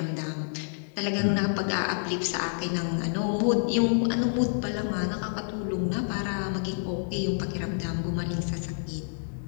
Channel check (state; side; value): silent; right; digital silence